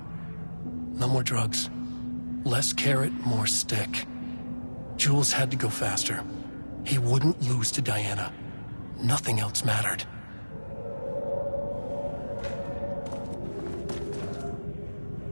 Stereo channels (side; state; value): both; inverted; correlation -1.00